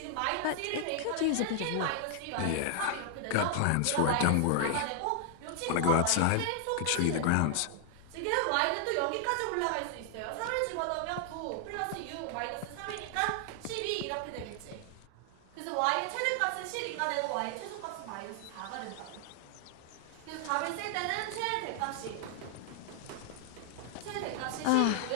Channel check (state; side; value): different; both; correlation 0.00